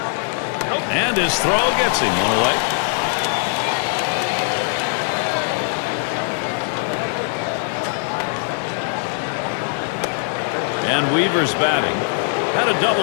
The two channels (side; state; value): right; silent; 59 dB below the other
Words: And his throw gets him 1 away. And Weaver's batting. Had a